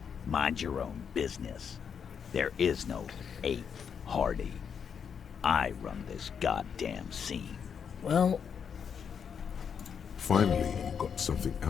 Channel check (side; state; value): right; quieter; 7.1 dB